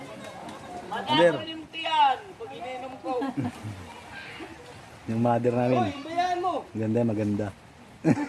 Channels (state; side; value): identical; both; correlation 1.00